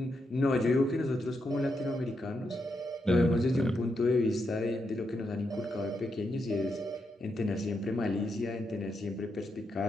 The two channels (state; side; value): normal; both; correlation 0.83